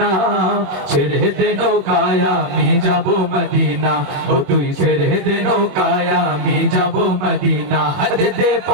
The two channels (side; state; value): left; late; 21 ms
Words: না। ছেড়ে দে নৌকায় আমি যাব মদিনা, ও তুই ছেড়ে দে নৌকায় আমি যাব মদিনা। দে দে